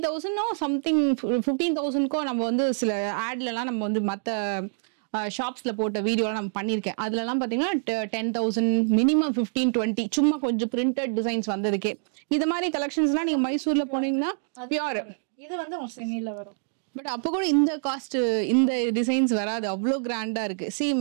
சம்திங் 15,000க்கோ நம்ம வந்து சில ஆட்லலாம் நம்ம வந்து மற்ற ஷாப்ஸ்ல போட்ட வீடியோலாம் நம்ம பண்ணியிருக்கேன். அதுலலாம் பார்த்தீங்கன்னா 10,000 மினிமம் 15-20 சும்மா கொஞ்சம் பிரிண்டட் டிசைன்ஸ் வந்ததுக்கே. இது மாதிரி கலெக்ஷன்ஸ்லாம் நீங்க மைசூர்ல போனீங்கன்னா பியூர். இது வந்து செமில வரும். பட் அப்போ கூட இந்த காஸ்ட் இந்த டிசைன்ஸ் வராது, அவ்வளோ கிராண்டா இருக்கு.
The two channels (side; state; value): left; silent; digital silence